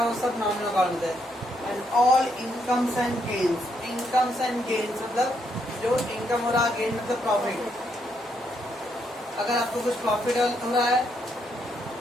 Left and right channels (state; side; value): normal; both; correlation 0.76